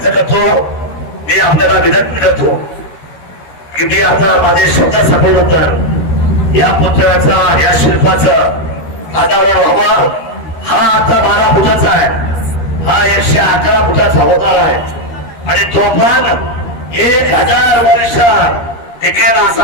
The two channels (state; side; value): late; right; 13 ms